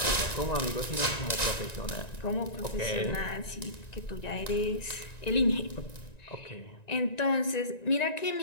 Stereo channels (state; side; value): late; right; 1.9 ms